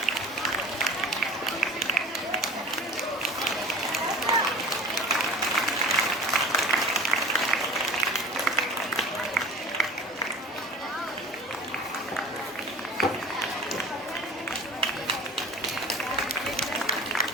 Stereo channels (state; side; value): normal; both; correlation 0.39